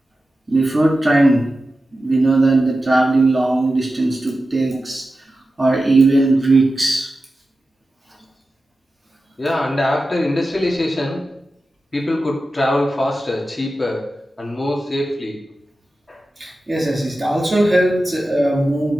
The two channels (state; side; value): normal; both; correlation 0.93